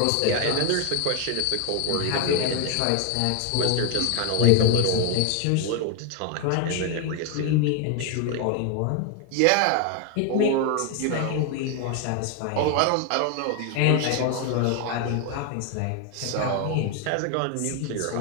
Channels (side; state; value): both; different; correlation 0.01